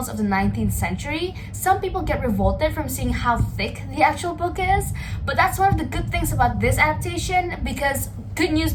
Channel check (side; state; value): both; identical; correlation 1.00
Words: of the 19th century, some people get revolted from seeing how thick the actual book is, but that's one of the good things about this adaptation because, good news